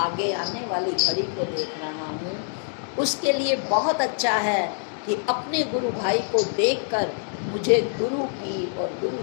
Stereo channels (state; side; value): silent; right; 62 dB below the other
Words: आने वाली घड़ी को देख रहा हूँ, उसके लिए बहुत अच्छा है कि अपने गुरु भाई को देखकर मुझे गुरु की और गुरु